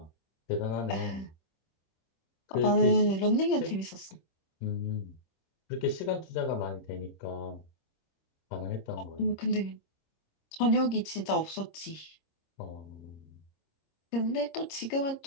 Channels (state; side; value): late; right; 26 ms